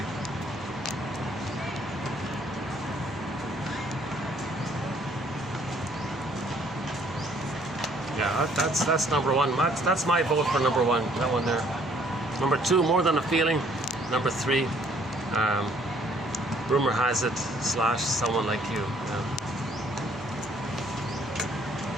Yeah, that's number one. That's my vote for number one. That one there. Number two, More Than a Feeling. Number three, Rumor Has It / Someone Like You. Yeah.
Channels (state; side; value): normal; both; correlation 0.62